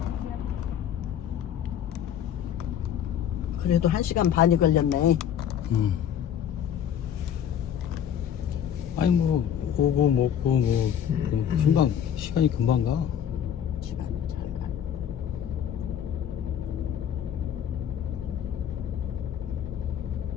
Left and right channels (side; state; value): right; quieter; 9.3 dB